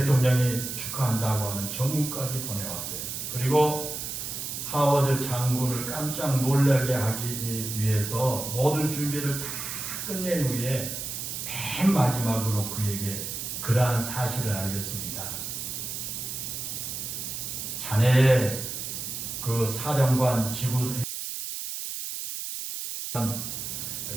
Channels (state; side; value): noise; right; hiss, 5 dB below the sound